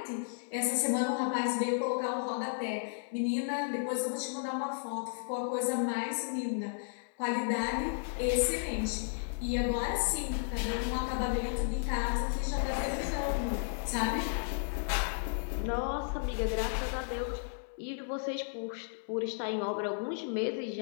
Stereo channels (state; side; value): silent; right; 55 dB below the other